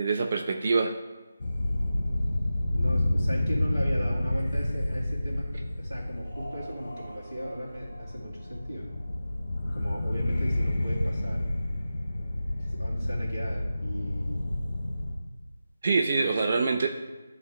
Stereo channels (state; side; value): inverted; both; correlation -0.92